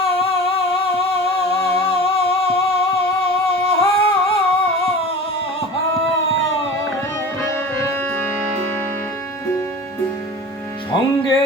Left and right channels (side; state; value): both; normal; correlation 0.36